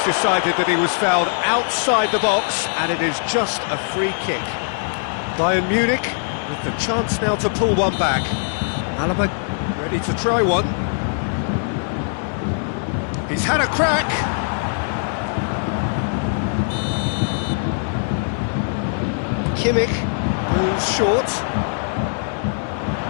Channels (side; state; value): right; silent; 65 dB below the other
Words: decided that he was fouled outside the box, and it is just a free kick. Bayern Munich with the chance now to pull one back. Alaba ready to try one. He's had a crack. Kimmich moves short.